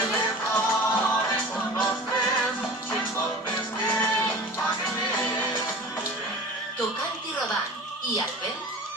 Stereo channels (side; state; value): both; normal; correlation 0.39